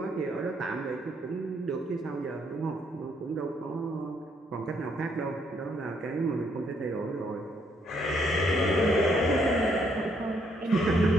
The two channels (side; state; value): both; normal; correlation 0.71